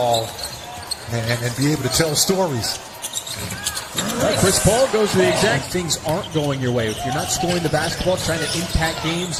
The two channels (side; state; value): both; identical; correlation 1.00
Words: And be able to tell stories. Right, Chris Paul goes to the exact things aren't going your way. If you're not scoring the basketball, trying to impact